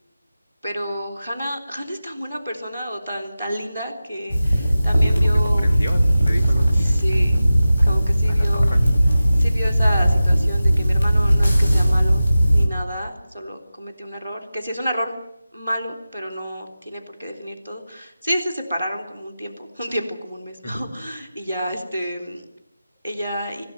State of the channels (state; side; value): inverted; both; correlation -0.95